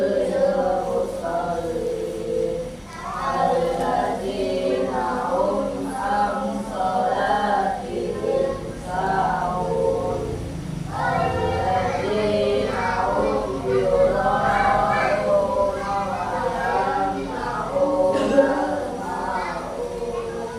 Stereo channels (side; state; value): both; identical; correlation 1.00